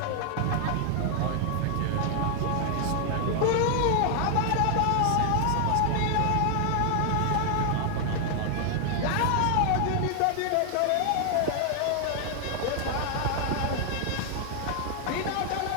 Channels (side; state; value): both; different; correlation 0.00